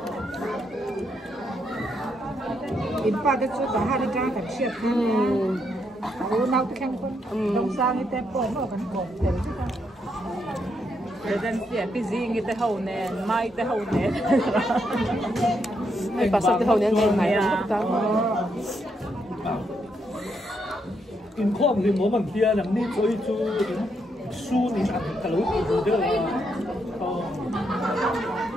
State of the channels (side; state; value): both; normal; correlation 0.78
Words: In pa cái chỗ đó hai cái cảnh siết. Nào cái khen con. Đông sang cái tempo nó còn còn để chứ không. Rồi dân xia busy người ta hậu nè, mai ta hậu nè. Ai bà sao hậu nè ngày mai không ta. In không thì mỗi bằng kia làm đi chơi chú su thì ăn cả lối từ đó.